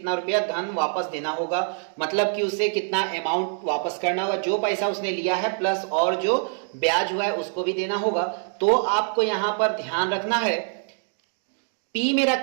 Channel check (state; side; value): silent; left; 61 dB below the other